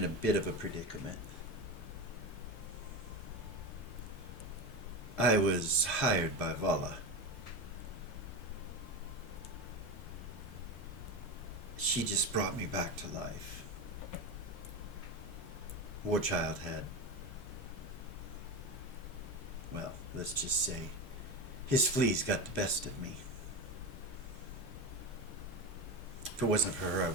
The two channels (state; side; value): normal; both; correlation 0.20